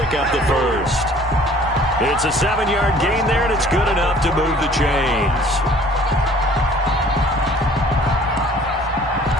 up the first. It's a 7-yard gain there, and it's good enough to move the chains.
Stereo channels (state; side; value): normal; both; correlation 0.53